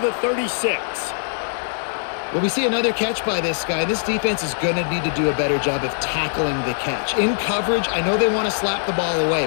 36. Well, we see another catch by this guy. This defense is going to need to do a better job of tackling the catch. In coverage, I know they want to slap the ball away,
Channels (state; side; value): silent; right; digital silence